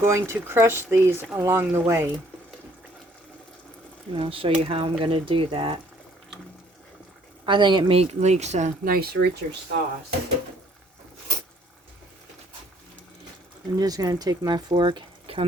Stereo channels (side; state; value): both; normal; correlation 0.62